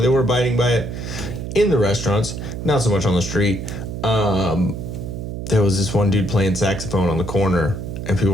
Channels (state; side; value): noise; right; hum, 7 dB below the sound